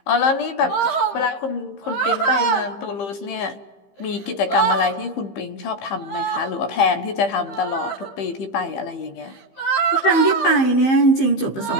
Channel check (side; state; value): right; late; 15 ms